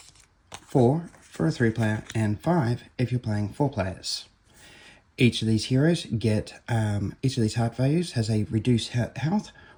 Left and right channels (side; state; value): both; identical; correlation 1.00